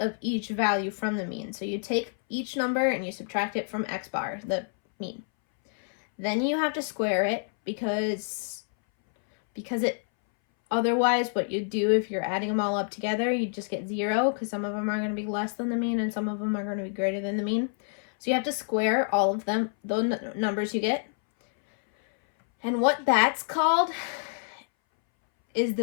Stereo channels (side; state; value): right; silent; 60 dB below the other